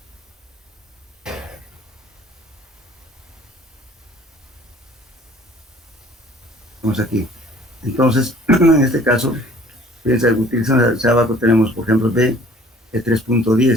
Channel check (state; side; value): normal; both; correlation 0.53